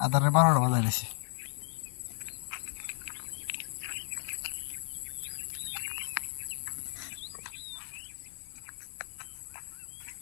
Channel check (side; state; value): right; silent; digital silence